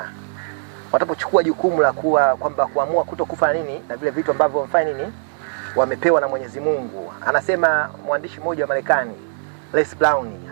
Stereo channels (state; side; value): silent; left; digital silence